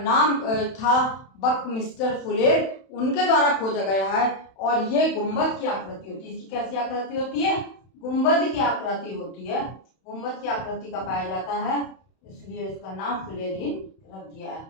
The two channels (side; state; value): right; late; 31 ms